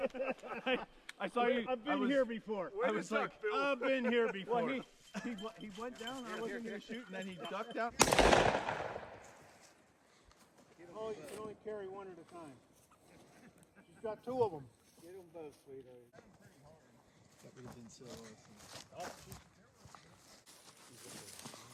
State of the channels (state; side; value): identical; both; correlation 1.00